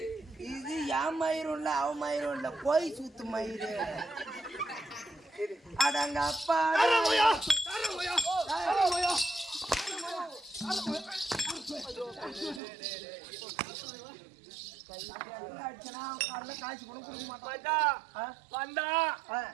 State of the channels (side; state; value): left; drops out; at 12.6 s